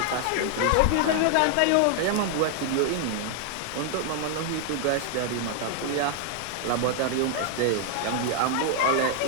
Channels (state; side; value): different; both; correlation 0.00